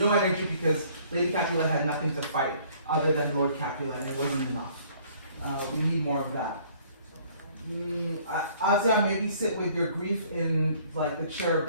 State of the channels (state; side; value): inverted; both; correlation -0.58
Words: energy because Lady Capulet had nothing to fight other than Lord Capulet, and it wasn't enough. We need more of that. Asia, maybe sit with your grief in like the chair or